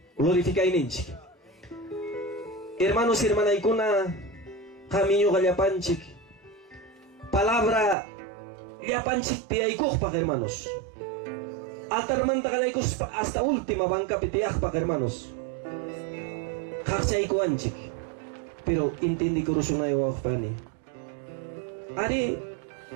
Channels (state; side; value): drops out; left; at 8.0 s